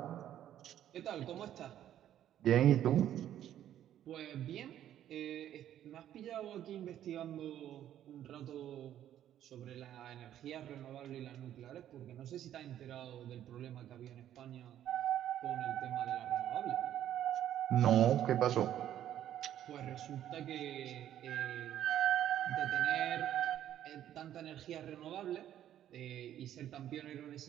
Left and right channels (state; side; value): quieter; left; 11.3 dB